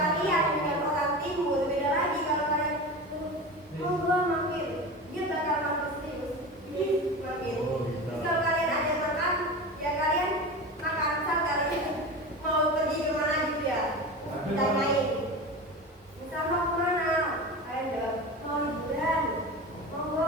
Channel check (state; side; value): normal; both; correlation 0.29